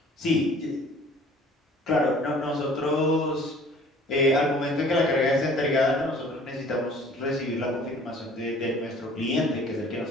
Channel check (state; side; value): normal; both; correlation 0.51